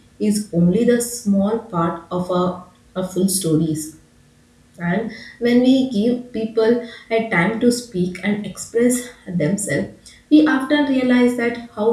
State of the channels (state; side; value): identical; both; correlation 1.00